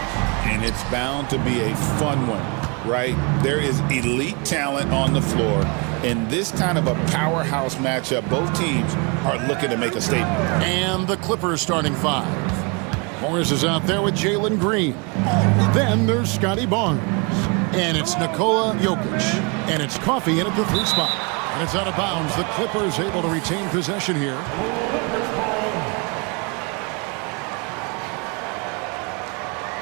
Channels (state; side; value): quieter; left; 31.4 dB